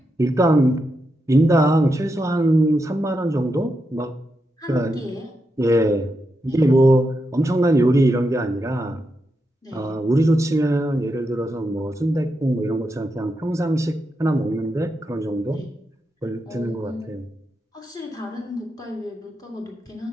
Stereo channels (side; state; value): both; normal; correlation 0.85